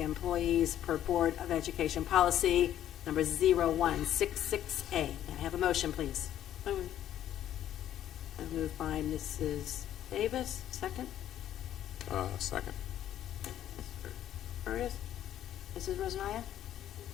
per Board of Education policy number 0166A. May I have a motion, please? Moved by Mrs. Davis. Second? Second. Curtis? Mrs. Rosanaya?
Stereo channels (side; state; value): right; quieter; 11.4 dB